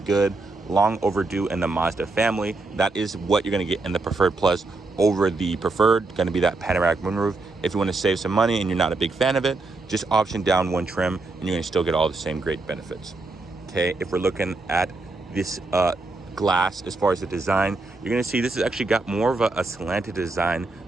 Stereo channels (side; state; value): left; quieter; 3.3 dB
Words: long overdue in the Mazda family. That is what you're going to get in the preferred plus over the preferred, going to be that panoramic moonroof. If you want to save some money and you're not a big fan of it, just option down one trim and you're going to still get all the same great benefits. Okay, if we're looking at this glass as far as the design, you're going to see this has actually got more of a slanted design